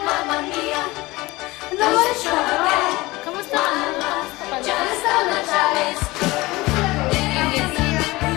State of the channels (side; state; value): right; quieter; 20.8 dB